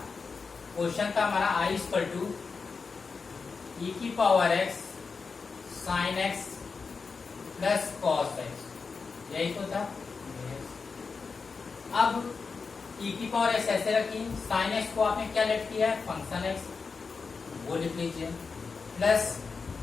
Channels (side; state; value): right; quieter; 4.9 dB